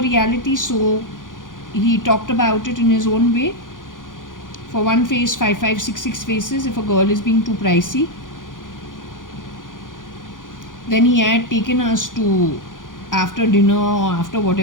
reality, so he talked about it in his own way. For one face, 5566 faces if a girl is being too pricey. Then he had taken us to, after dinner or after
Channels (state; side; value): late; right; 0.89 ms